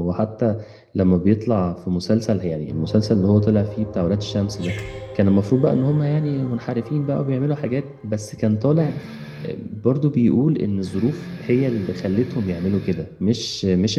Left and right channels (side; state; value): both; identical; correlation 1.00